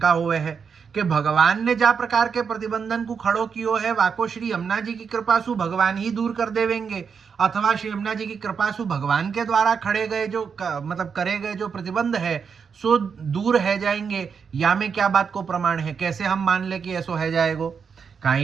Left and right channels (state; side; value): quieter; left; 6.3 dB